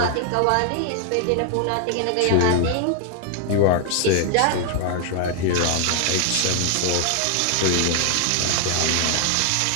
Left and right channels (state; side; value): different; both; correlation 0.00